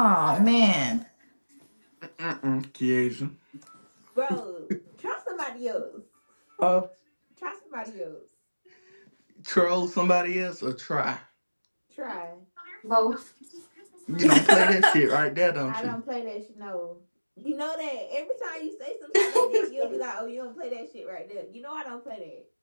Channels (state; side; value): inverted; both; correlation -1.00